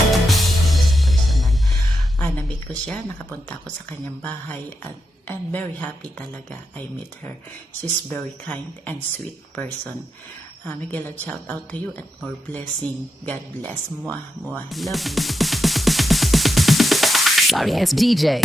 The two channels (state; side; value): normal; both; correlation 0.86